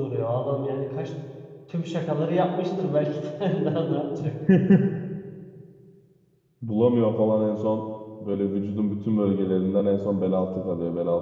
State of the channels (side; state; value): both; identical; correlation 1.00